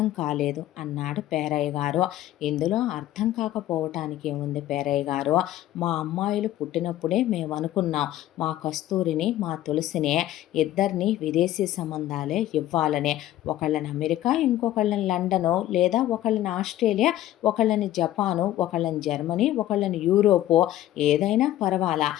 కాలేదు అన్నాడు పేరయ్య గారు. ఇందులో అర్థం కాకపోవటానికి ఏముంది పేరయ్య గారు, మా అమ్మాయిలు పుట్టినప్పుడే మేము అనుకున్నాం మా కస్తూరిని మా తులసిని ఇద్దరిని విదేశీ సంబంధాలే ఇవ్వాలని. ఒకళ్ళని అమెరికా, ఇంకొకళ్ళని లండను, లేదా ఒకళ్ళని ఆస్ట్రేలియా, ఒకళ్ళని జపాను, ఒకళ్ళని జర్మనీ, ఒకళ్ళని యూరోపు, ఏదైనా పర్వాలా,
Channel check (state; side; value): quieter; right; 13.8 dB